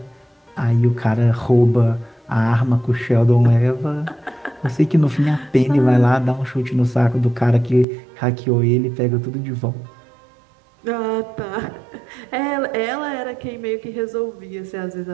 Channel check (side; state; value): left; drops out; at 7.9 s